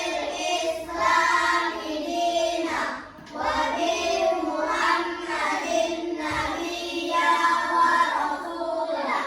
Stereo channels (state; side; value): identical; both; correlation 1.00